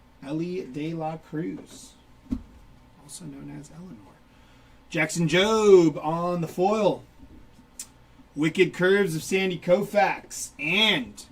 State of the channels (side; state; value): both; identical; correlation 1.00